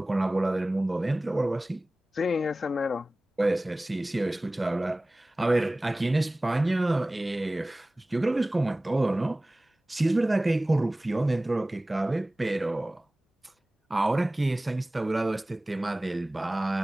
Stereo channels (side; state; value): both; normal; correlation 0.98